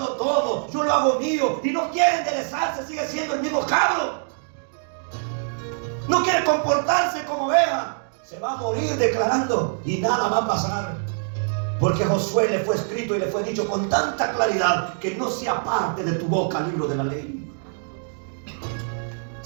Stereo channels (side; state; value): left; silent; digital silence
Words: tomo, yo lo hago mío, y no quiere enderezarse, sigue siendo el mismo cabro, no quiere comportarse como vea, se va a morir declarando y nada va a pasar? Porque a Josué le fue escrito y le fue dicho con tanta claridad que no se aparte de tu boca el libro de la ley.